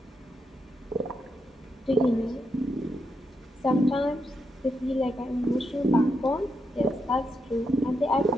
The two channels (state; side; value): normal; both; correlation 0.83